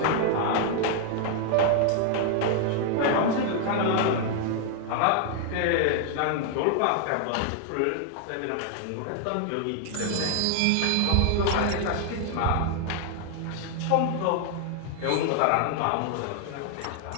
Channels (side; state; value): both; different; correlation 0.00